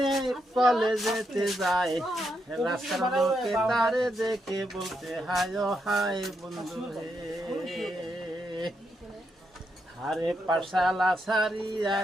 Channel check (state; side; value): normal; both; correlation 0.81